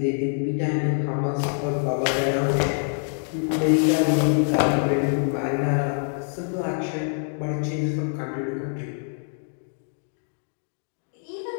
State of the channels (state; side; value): silent; right; 62 dB below the other